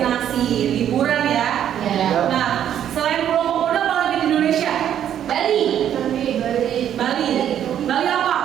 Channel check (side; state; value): left; quieter; 10.1 dB